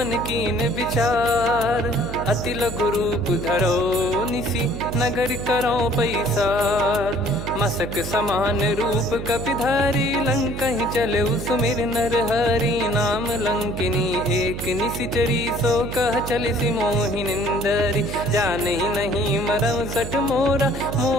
कीन विचार। अति लघु रूप धरो निसी, नगर करो पैसार। मसक समान रूप कपिधारी, लंकहि चले सुमिर नर हरि। नाम लंकिनी एक निशिचरी, सो कह चलिसि मोहि निंदरी। जानहि नहीं मरम सठ मोरा,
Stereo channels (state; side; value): noise; right; hum, 7 dB below the sound